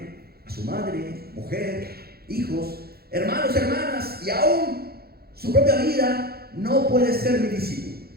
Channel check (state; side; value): late; left; 0.45 ms